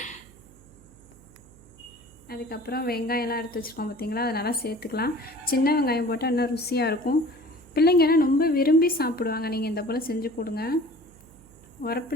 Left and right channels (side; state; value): right; noise; hum, 24 dB below the sound